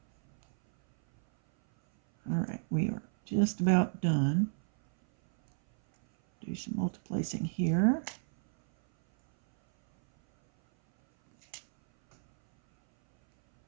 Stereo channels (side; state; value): left; silent; 57 dB below the other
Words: All right, we are just about done. Do some multiplacing here.